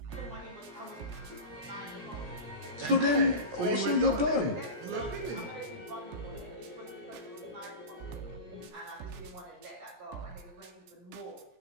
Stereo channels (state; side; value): late; left; 17 ms